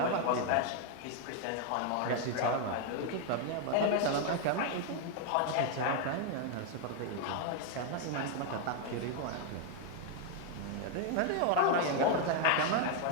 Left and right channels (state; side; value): different; both; correlation 0.00